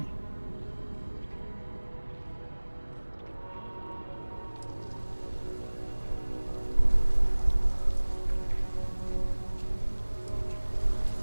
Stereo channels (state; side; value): inverted; both; correlation -1.00